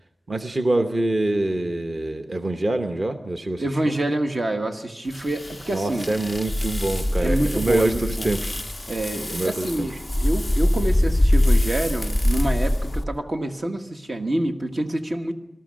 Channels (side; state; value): both; normal; correlation 0.96